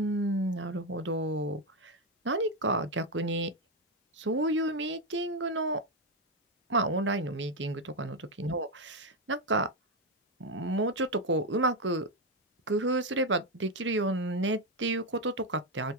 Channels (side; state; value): both; normal; correlation 0.07